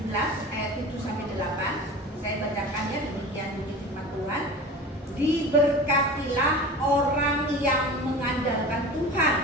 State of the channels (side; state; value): both; normal; correlation 0.35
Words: ayat 7 sampai 8, saya bacakannya, demikian bunyi firman Tuhan. Diberkatilah orang yang mengandalkan Tuhan,